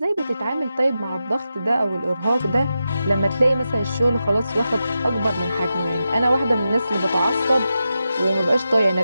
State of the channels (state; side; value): inverted; both; correlation -0.90